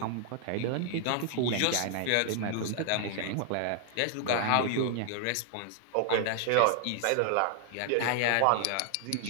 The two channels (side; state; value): both; different; correlation 0.00